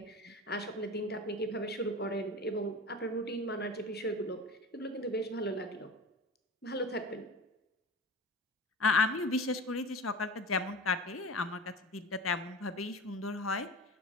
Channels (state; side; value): normal; both; correlation 0.34